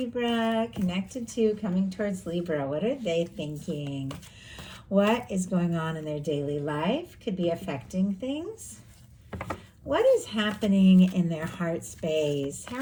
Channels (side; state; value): both; identical; correlation 1.00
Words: connected to, coming towards Libra. What are they thinking? What is going on in their daily life? Could be affecting things. What is happening in their heart space?